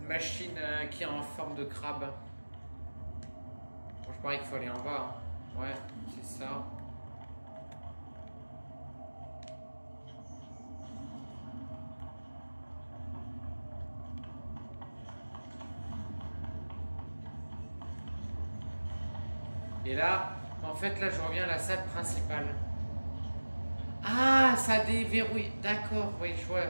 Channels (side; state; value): both; inverted; correlation -1.00